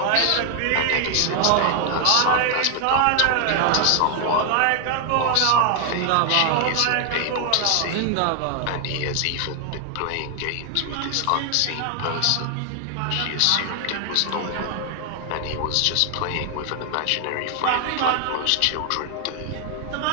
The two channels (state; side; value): different; both; correlation 0.00